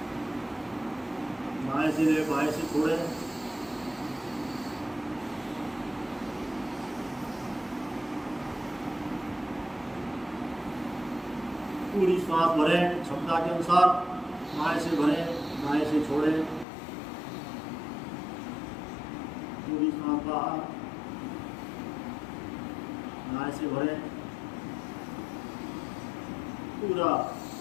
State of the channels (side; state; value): right; drops out; at 16.7 s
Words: बाएं से ले, बाएं से छोड़ें। पूरी सांस भरें क्षमता के अनुसार, बाएं से भरें, दाएं से छोड़ें। पूरी सांस बाहर, दाएं से भरें। पूरा